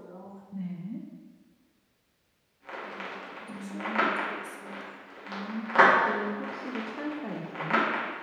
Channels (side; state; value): both; identical; correlation 1.00